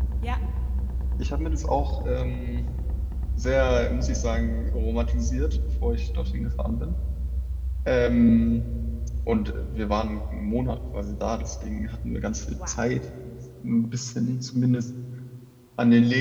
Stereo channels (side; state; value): both; identical; correlation 1.00